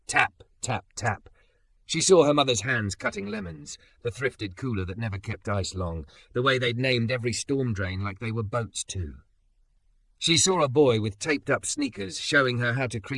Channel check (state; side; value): identical; both; correlation 1.00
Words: Tap, tap, tap. She saw her mother's hands cutting lemons, the thrifted cooler that never kept ice long, the way they'd named every storm drain like they were boats too. She saw a boy with taped-up sneakers showing her how to